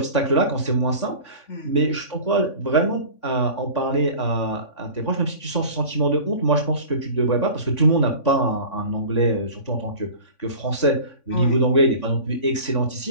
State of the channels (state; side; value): late; right; 3.5 ms